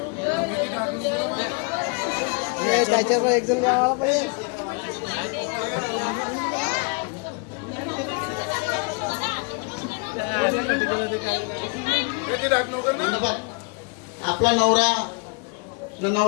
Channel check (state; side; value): quieter; right; 34.2 dB